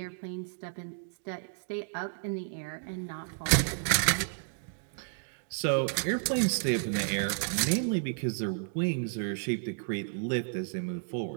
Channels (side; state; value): left; silent; digital silence